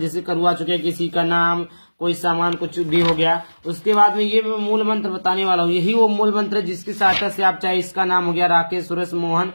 करवा चुके हैं। किसी का नाम, कोई सामान, कुछ भी हो गया, उसके बाद में ये मैं मूल मंत्र बताने वाला हूँ। यही वो मूल मंत्र है जिसकी सहायता से आप, चाहे इसका नाम हो गया राकेश, सुरेश, मोहन,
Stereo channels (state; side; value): inverted; both; correlation -1.00